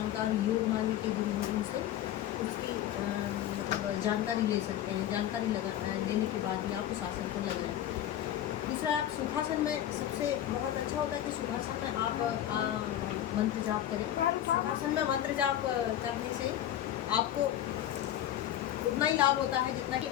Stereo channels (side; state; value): right; quieter; 11.8 dB